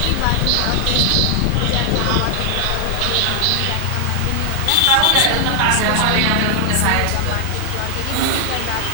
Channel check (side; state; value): both; different; correlation 0.00